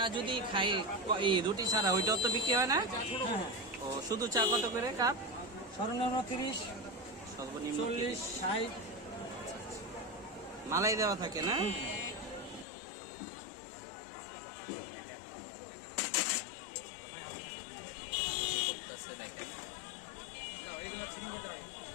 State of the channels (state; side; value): drops out; right; at 12.7 s